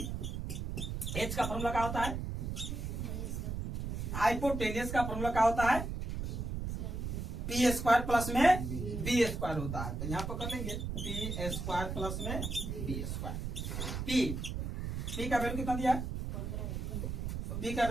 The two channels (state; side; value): noise; right; rumble, 4 dB below the sound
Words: h का फॉर्मूला क्या होता है, हाइपोटेनियस का फॉर्मूला क्या होता है p स्क्वायर प्लस में b स्क्वायर होता है। तो यहाँ पर कर लेंगे p स्क्वायर प्लस में b स्क्वायर। p का वैल्यू कितना दिया है, b का